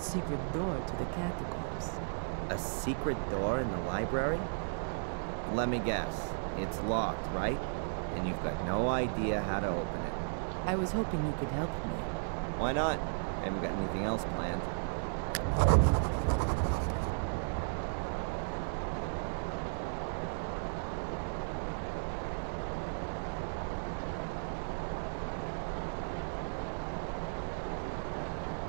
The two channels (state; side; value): silent; left; digital silence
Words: door to the catacombs. A secret door in the library? Let me guess. It's locked, right? And you've got no idea how to open it. I was hoping you could help me. Why not? I haven't got anything else planned.